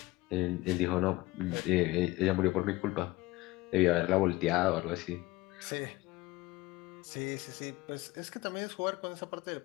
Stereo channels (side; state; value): right; quieter; 19.8 dB